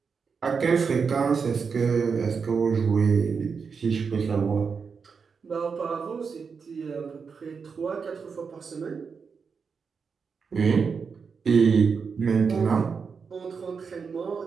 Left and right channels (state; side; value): quieter; left; 5.6 dB